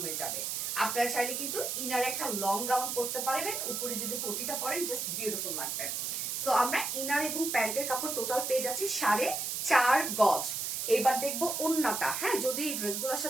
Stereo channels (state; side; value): noise; right; hiss, 2 dB below the sound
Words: হয়ে যাবে। আপনারা চাইলে কিন্তু ইনার একটা লং গাউন করতে পারবেন, উপরে যদি কোটিটা পরেন জাস্ট বিউটিফুল লাগবে। সো আমরা ইনার এবং প্যান্টের কাপড় টোটাল পেয়ে যাচ্ছি 4.5 গজ। এবার দেখবো ওন্নাটা। হ্যাঁ, যদি এই ড্রেসগুলোর